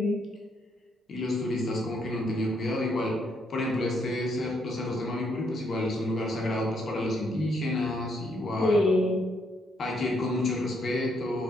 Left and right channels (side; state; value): both; normal; correlation 0.73